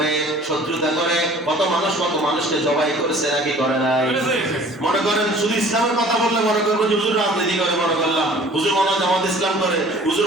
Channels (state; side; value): normal; both; correlation 0.49